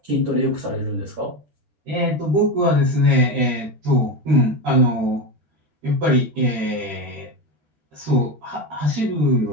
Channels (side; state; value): left; late; 13 ms